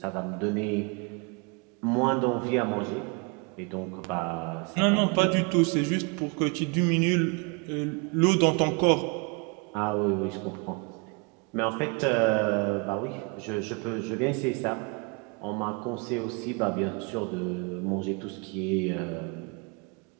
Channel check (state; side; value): quieter; left; 32.1 dB